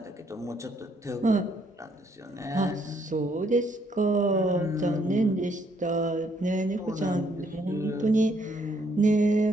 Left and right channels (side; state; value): both; normal; correlation 0.70